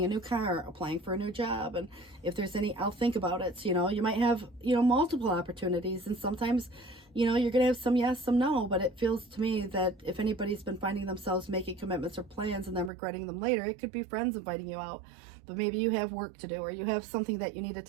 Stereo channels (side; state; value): left; drops out; at 12.9 s